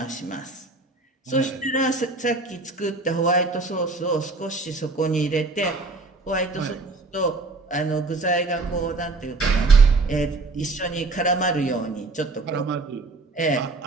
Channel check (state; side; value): quieter; left; 3.5 dB